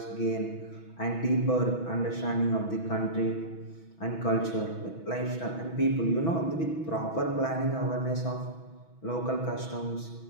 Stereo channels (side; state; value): right; late; 6.1 ms